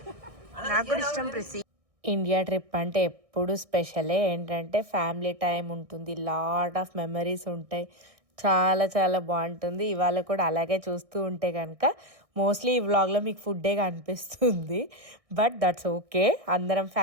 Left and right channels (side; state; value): left; late; 1.6 ms